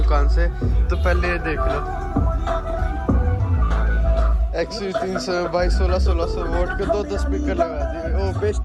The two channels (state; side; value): identical; both; correlation 1.00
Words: से। तो पहले ये देख लो XU 300 भाई 1600 वोट के 2 स्पीकर लगा दिए। ओ बेस